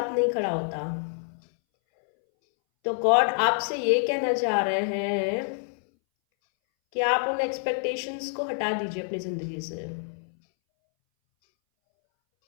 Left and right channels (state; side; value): silent; right; 60 dB below the other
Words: नहीं खड़ा होता। तो गॉड आपसे ये कहना चाह रहे हैं कि आप उन एक्सपेक्टेशंस को हटा दीजिए अपनी ज़िंदगी से।